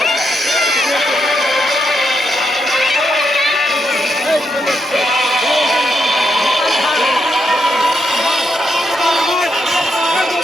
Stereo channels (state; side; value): normal; both; correlation 0.80